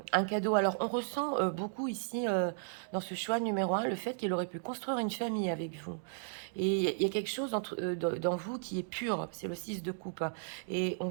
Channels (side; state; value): left; silent; digital silence